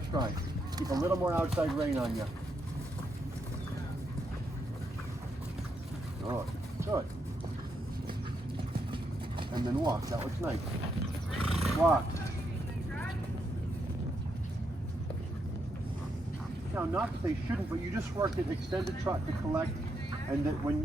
stride. Keep a little more outside rein on you. Good. Good. And then walk. That looks nice. Walk. Now, not that they shouldn't, but you just worked at extended trot to collect, and that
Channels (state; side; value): normal; both; correlation 0.80